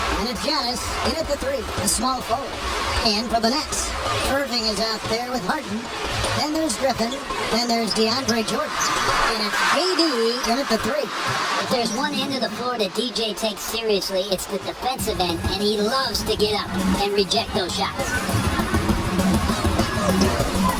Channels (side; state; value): both; identical; correlation 1.00